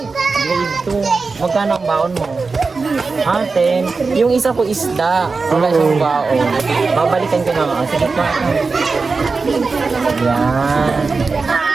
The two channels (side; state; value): left; quieter; 4.3 dB